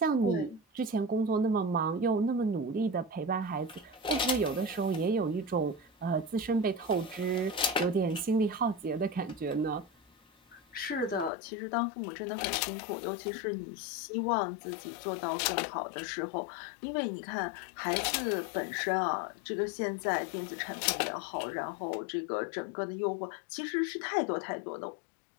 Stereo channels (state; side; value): drops out; right; at 11.3 s